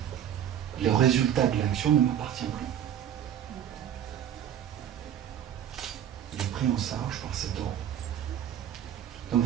le résultat de l'action ne m'appartient plus. Il est pris en charge par cet ordre. Donc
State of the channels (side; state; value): left; quieter; 10.1 dB